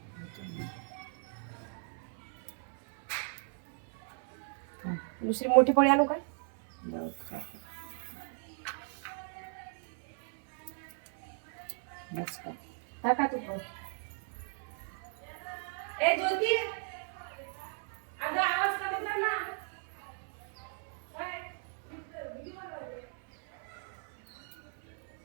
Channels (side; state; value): left; silent; 53 dB below the other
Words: दुसरी मोठी पोळी आणू काय? टाका तू पण. ए ज्योती, अगं आवाज कमी कर ना.